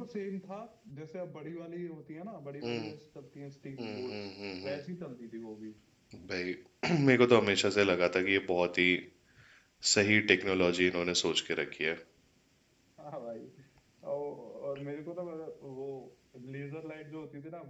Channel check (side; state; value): both; identical; correlation 1.00